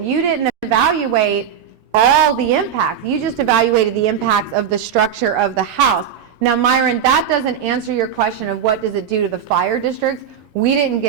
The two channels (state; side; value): quieter; left; 8.4 dB